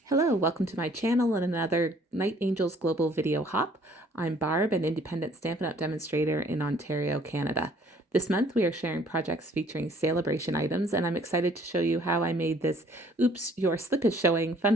Hello, welcome to my channel and another Night Angels Global Video Hop. I'm Barb, an independent Stampin' Up! Demonstrator in Ontario, Canada. This month we are sharing projects featuring celebration items, and I'm excited to show you how I made this Oops, Your Slip is Showing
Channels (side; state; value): both; normal; correlation 0.59